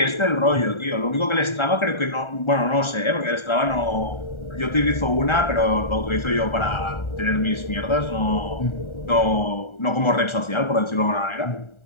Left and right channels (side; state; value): right; late; 1.4 ms